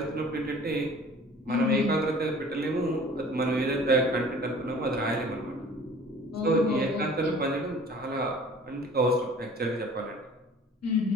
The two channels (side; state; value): both; normal; correlation 0.48